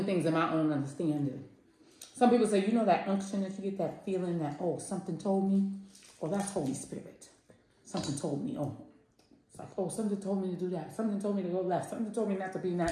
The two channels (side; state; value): both; identical; correlation 1.00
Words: things in my own understanding. Some people say, you know that unction that you get, that feeling that, oh, something told me? Oh, that's Holy Spirit. Something told me, oh. It's like, oh, something told me to do that. Something told me to go left. Something told me not to be in